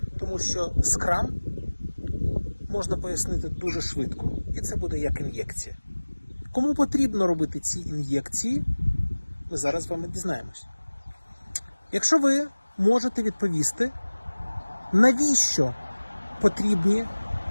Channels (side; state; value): both; inverted; correlation -1.00